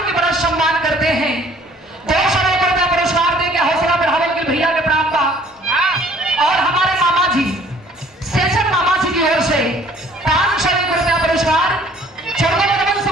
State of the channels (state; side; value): normal; both; correlation 0.56